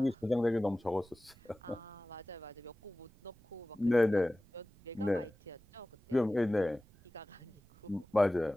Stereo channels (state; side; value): noise; right; rumble, 25 dB below the sound